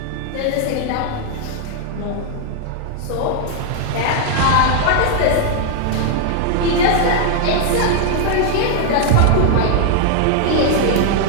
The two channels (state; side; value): different; both; correlation 0.00